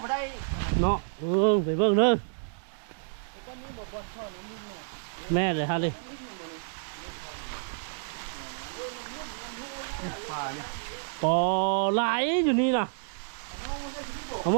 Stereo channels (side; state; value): left; silent; 58 dB below the other